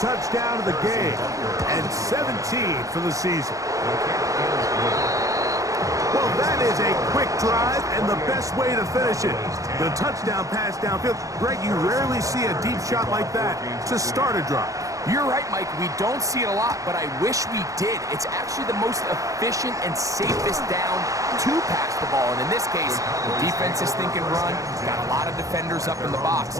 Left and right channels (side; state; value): left; late; 0.16 ms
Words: of the game and 17 for the season. Well, that is a quick drive and the best way to finish it. The touchdown pass downfield. Greg, you rarely see a deep shot like that to start a drive. You're right, Mike. We don't see it a lot, but I wish we did. It's actually the most efficient and safest down to pass the ball. And in this case, the defense is thinking run, got a lot of defenders up in the box,